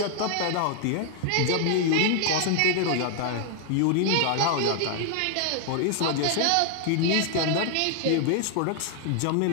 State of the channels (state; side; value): different; both; correlation 0.00